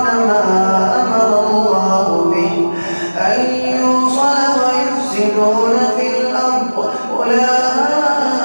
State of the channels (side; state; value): both; inverted; correlation -1.00